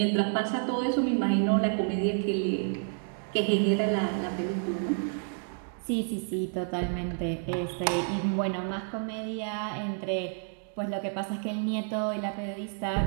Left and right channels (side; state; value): left; silent; 58 dB below the other